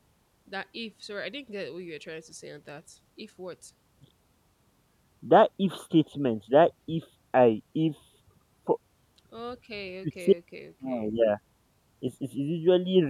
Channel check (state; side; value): identical; both; correlation 1.00